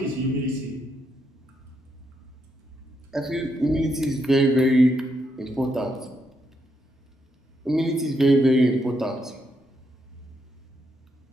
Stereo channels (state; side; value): normal; both; correlation 0.79